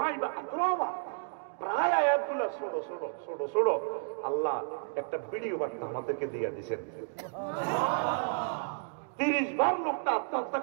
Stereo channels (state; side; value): silent; left; digital silence